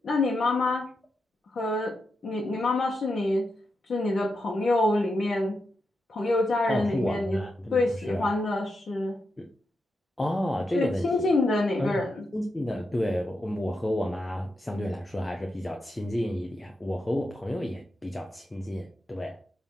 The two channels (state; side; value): normal; both; correlation 0.86